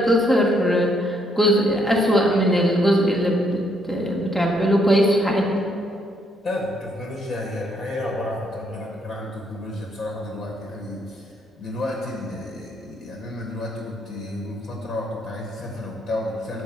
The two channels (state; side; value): normal; both; correlation 0.72